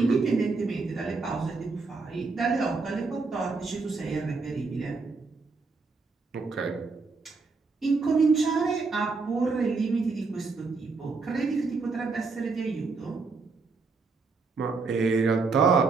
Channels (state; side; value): quieter; left; 4.3 dB